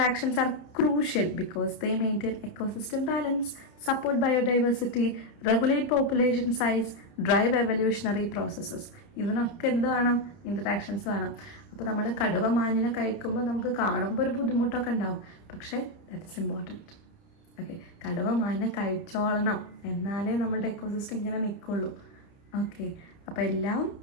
are crucial because they maintain ecosystem balance, support biodiversity, regulate population size, drive evolutionary processes. ഇതിനൊക്കെ എന്ത് വേണം? ഇൻ്ററാക്ഷൻസ് വേണം. അപ്പോൾ നമ്മൾ കടുവ മാനിനെ കഴിക്കുമ്പോൾ നമുക്ക് കാണുമ്പോൾ ഒരു ബുദ്ധിമുട്ടൊക്കെ ഉണ്ടാവും, പക്ഷേ ദാറ്റ് ഇസ് ഇമ്പോർട്ടൻറ്റ്. ഓക്കെ, കടുവ മാനിനെ കഴിച്ചോളണം, എന്നാലേ നമ്മളുടെ എക്കോസിസ്റ്റം ഇങ്ങനെ നിൽക്കുള്ളൂ. ഓക്കെ, അപ്പോൾ എല്ലാം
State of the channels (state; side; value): late; right; 30 ms